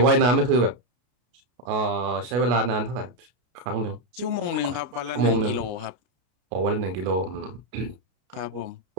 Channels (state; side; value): late; left; 33 ms